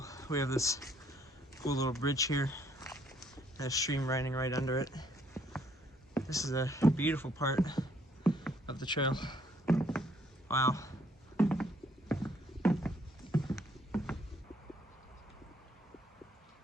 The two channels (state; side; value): normal; both; correlation 0.66